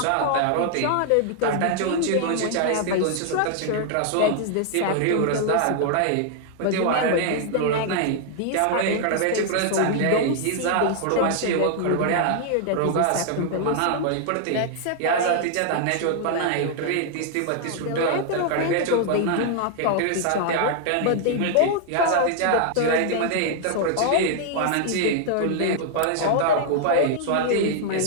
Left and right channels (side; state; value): both; different; correlation 0.00